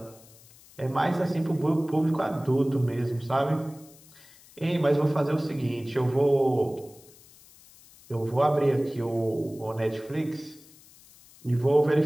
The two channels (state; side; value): noise; left; hiss, 24 dB below the sound